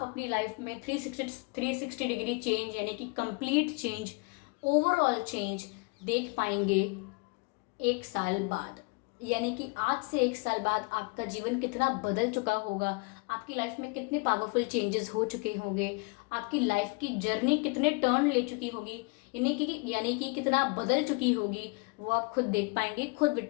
अपनी लाइफ में 360 डिग्री चेंज यानी कि कंप्लीट चेंज, ओवरऑल चेंज देख पाएंगे 1 साल बाद। यानी कि आज से 1 साल बाद आपका जीवन कितना बदल चुका होगा, आपकी लाइफ में कितने पावरफुल चेंजेस हो चुके होंगे, आपकी लाइफ की जर्नी कितने टर्न ले चुकी होगी, यानी कि कितना बदल चुकी होगी, वो आप खुद देख पाएंगे, खुद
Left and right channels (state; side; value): quieter; right; 30.8 dB